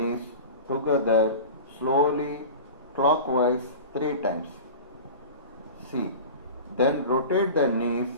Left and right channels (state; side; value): inverted; both; correlation -0.34